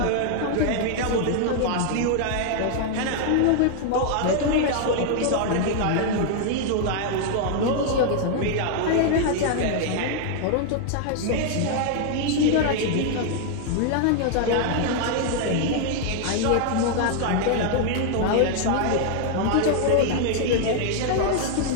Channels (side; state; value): both; different; correlation 0.00